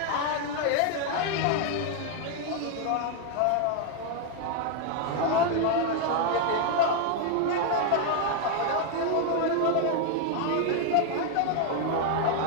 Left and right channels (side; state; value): both; different; correlation 0.00